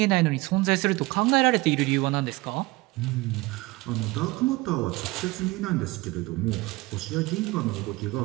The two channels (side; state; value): left; quieter; 21.8 dB